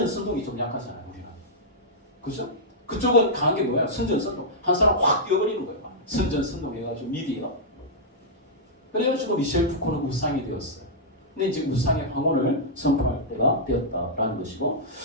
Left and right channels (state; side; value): normal; both; correlation -0.10